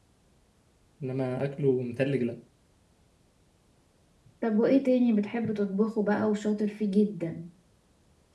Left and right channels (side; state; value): both; identical; correlation 1.00